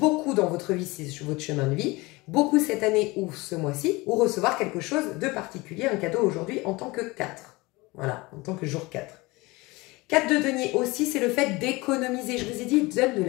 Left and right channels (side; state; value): right; quieter; 22.9 dB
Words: dans votre vie, c'est votre chemin de vie, beaucoup cette année ou ce mois-ci, ou recevoir quelque chose de particulier, un cadeau aujourd'hui en tant que 4. Voilà, en tant que jour 4. 4 de denier aussi, c'est le fait d'économiser. Je vous ai dit, il donne de